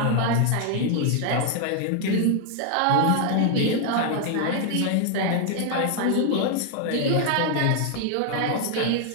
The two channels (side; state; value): both; different; correlation 0.00